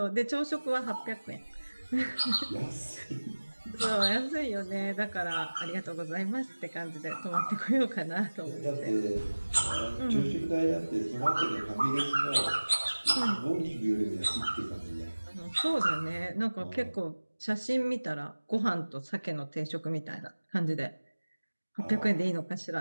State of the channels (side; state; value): both; inverted; correlation -1.00